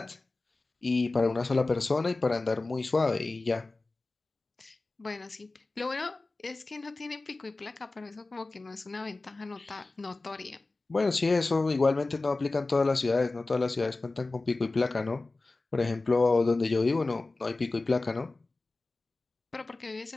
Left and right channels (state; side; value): quieter; right; 3.3 dB